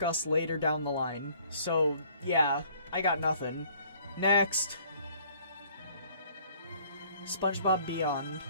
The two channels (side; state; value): both; inverted; correlation -0.59